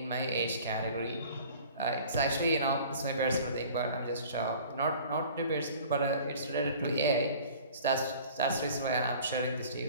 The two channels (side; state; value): both; inverted; correlation -0.46